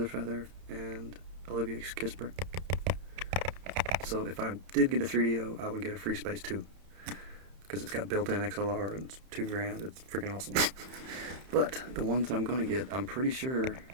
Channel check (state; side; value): late; left; 31 ms